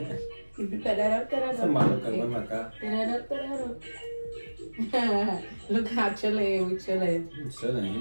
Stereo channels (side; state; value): both; inverted; correlation -1.00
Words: Look how chilling, we chilling. I'm chilling. You